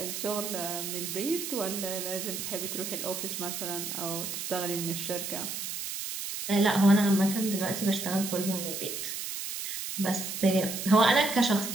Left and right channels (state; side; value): noise; right; hiss, 5 dB below the sound